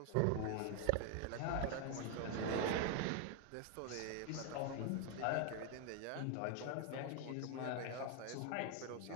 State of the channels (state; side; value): different; both; correlation 0.01